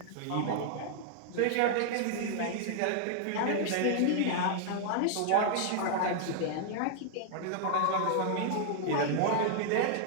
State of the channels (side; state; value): both; different; correlation -0.01